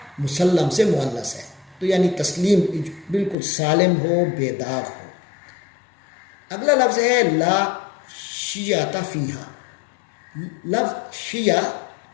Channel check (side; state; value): right; drops out; at 3.4 s